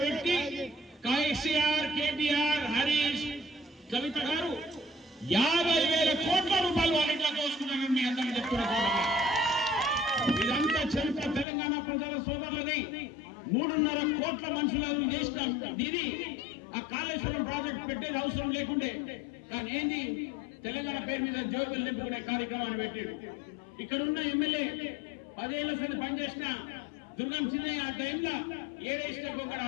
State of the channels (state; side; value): drops out; right; at 11.5 s